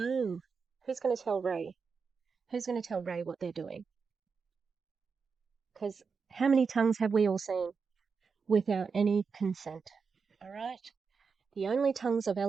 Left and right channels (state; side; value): quieter; left; 5.4 dB